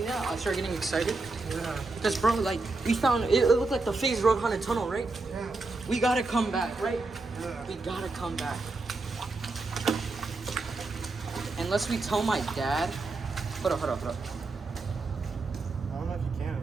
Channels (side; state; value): left; quieter; 3.5 dB